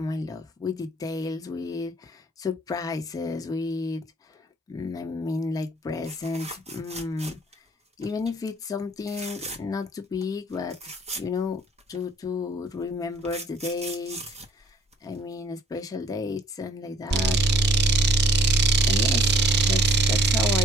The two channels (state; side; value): normal; both; correlation 0.58